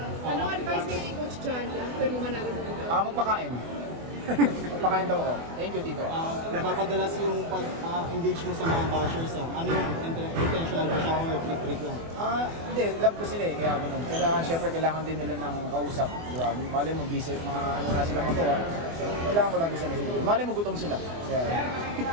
Anong advice ni Coach Johnny after mo manalo mo? Magpakain. Magpakain daw ako. Thank you, Tito. Napapadalas yung pag-engage mo sa mga bashers. Ano yung intentional ba siya or trick lang? Hindi, love ko sila eh. Kaya ganun. Siyempre, kailangan din nila ng kausap. Diba? Malay mo, busy, ano na silang magawa. So, kailangan ko lang din sila. Malay mo, gutom sila. Kaya,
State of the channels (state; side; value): late; left; 24 ms